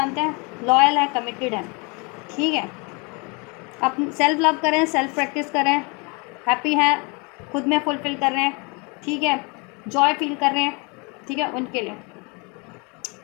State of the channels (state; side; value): quieter; right; 30.8 dB